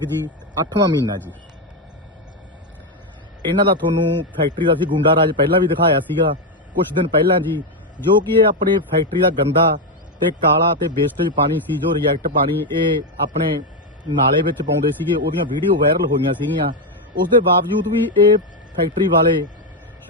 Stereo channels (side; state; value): both; normal; correlation 0.06